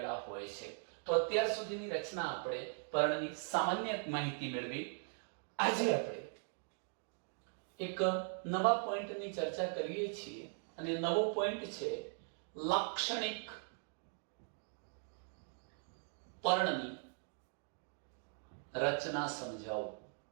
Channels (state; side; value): silent; left; 51 dB below the other